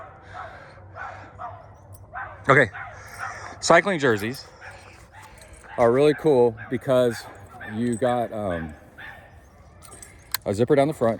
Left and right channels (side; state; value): both; identical; correlation 1.00